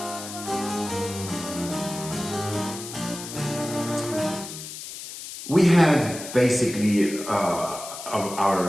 We had basically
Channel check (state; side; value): noise; left; hiss, 10 dB below the sound